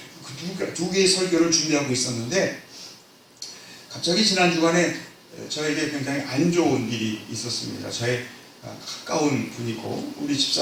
두 개의 설교를 준비하고 있었는데 갑자기 지난 주간에 저에게 굉장히 안 좋은 일이 있었습니다. 저의 가까운 분이고 우리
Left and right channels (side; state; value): both; identical; correlation 1.00